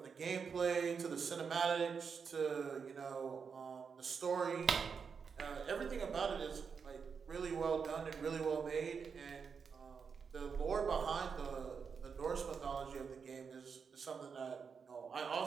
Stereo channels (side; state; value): left; quieter; 6.0 dB